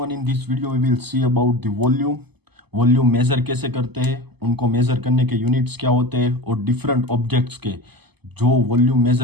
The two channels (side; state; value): left; late; 0.98 ms